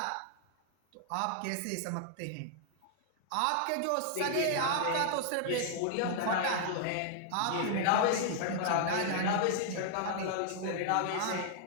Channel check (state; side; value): different; both; correlation -0.01